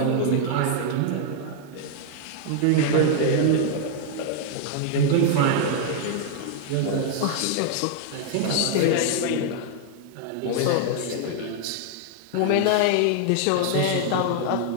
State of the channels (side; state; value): both; different; correlation 0.00